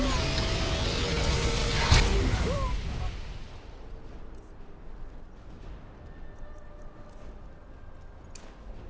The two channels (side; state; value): both; identical; correlation 1.00